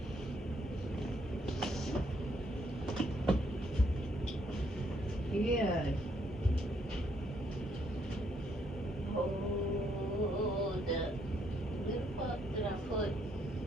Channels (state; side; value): normal; both; correlation 0.71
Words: yeah. Hold up. Where the fuck did I put?